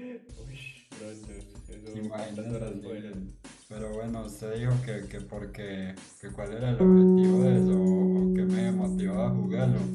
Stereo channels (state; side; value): identical; both; correlation 1.00